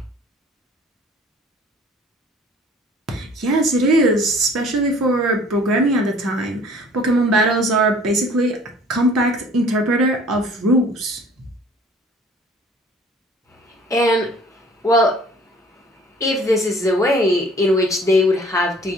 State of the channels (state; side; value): normal; both; correlation 0.51